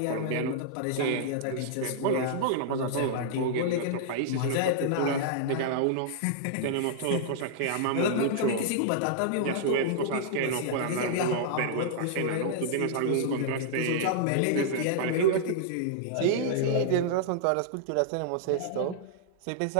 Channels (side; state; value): both; different; correlation -0.01